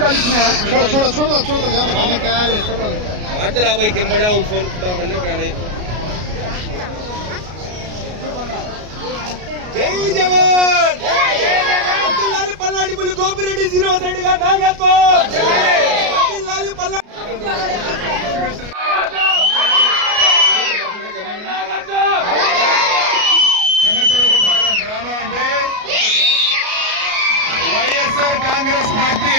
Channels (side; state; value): left; late; 33 ms